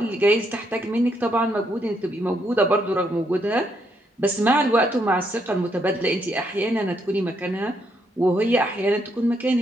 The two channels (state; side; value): normal; both; correlation 0.75